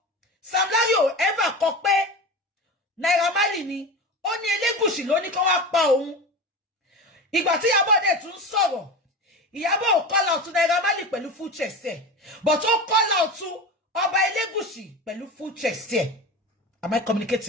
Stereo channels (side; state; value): both; normal; correlation 0.27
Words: Sam Larry ò ever kọ pé Naira Marley ni ó ní Elégùṣì ló ní kó wá pa òun. Ìgbà tí Ìyábọ̀ dẹ̀ tún sọ̀rọ̀ Ìyábọ̀ ò call out to Naira Marley pẹ̀lú full chest ẹ̀ but ó call out to Ọba Elégùṣì pẹ̀lú full chest ẹ̀. Am I